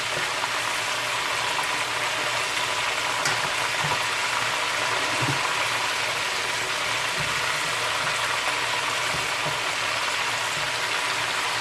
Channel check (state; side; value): identical; both; correlation 1.00